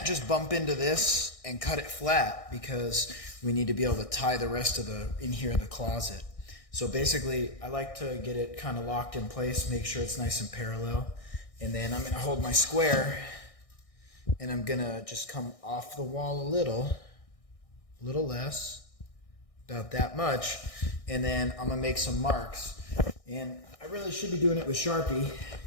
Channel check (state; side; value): late; right; 1.6 ms